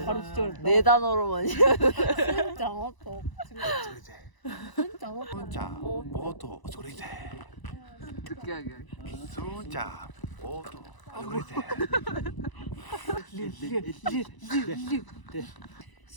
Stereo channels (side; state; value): right; late; 1.0 ms